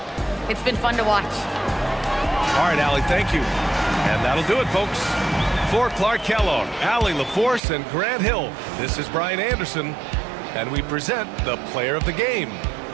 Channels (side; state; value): left; drops out; at 7.6 s